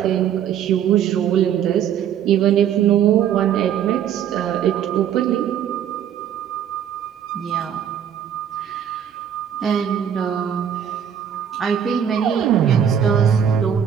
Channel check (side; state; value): left; quieter; 8.9 dB